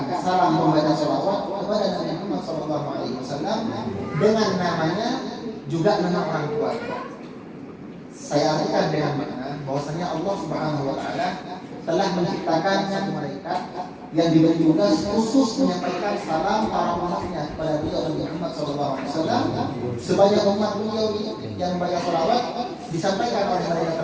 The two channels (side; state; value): both; identical; correlation 1.00